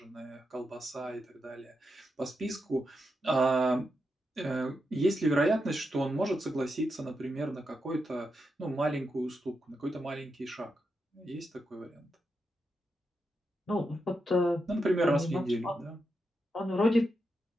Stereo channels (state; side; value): normal; both; correlation 0.85